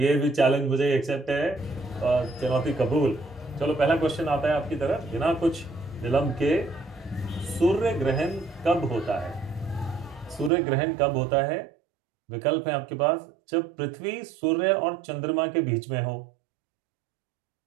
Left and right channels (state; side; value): drops out; left; at 10.5 s